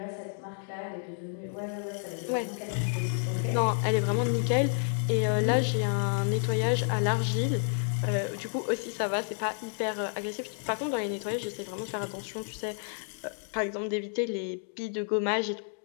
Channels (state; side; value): silent; right; 58 dB below the other